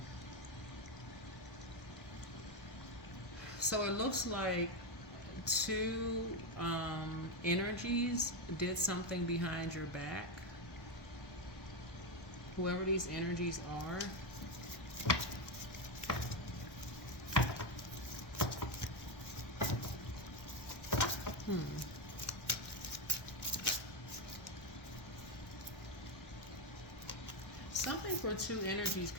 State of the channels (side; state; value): right; late; 1.1 ms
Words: So it looks like two energies did something behind your back. Whoever these energies are. Something for two energies